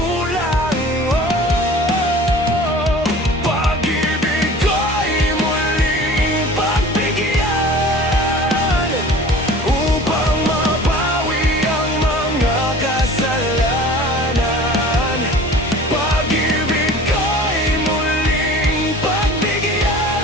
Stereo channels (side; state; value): both; normal; correlation 0.43